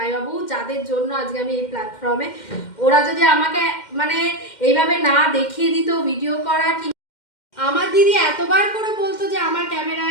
যাদের জন্য আজকে আমি এই প্ল্যাটফর্মে, ওরা যদি আমাকে মানে এইভাবে না দেখিয়ে দিত ভিডিও করা, কি আমার দিদি এতবার করে বলতো যে আমার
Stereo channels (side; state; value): right; late; 2.1 ms